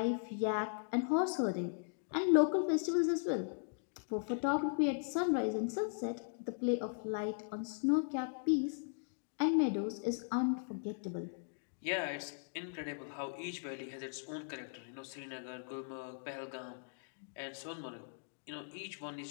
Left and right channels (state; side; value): silent; right; digital silence